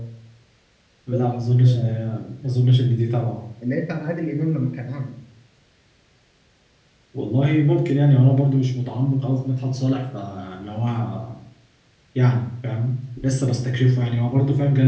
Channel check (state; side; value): identical; both; correlation 1.00